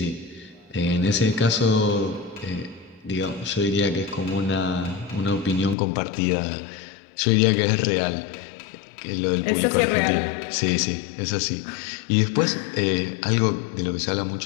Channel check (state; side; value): drops out; right; at 5.8 s